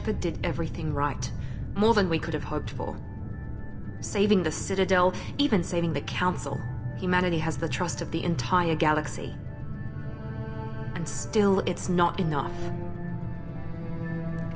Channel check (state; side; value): identical; both; correlation 1.00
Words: did everything right. More than we could have hoped for. Saving the Citadel, even saving the Council. Humanity has the trust of the entire galaxy. And still, it's not enough.